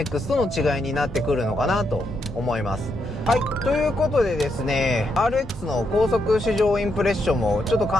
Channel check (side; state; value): both; normal; correlation 0.80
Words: との違いになってくるのかなと思います。はい、ということでですね、RX の高速試乗インプレッションもちょっと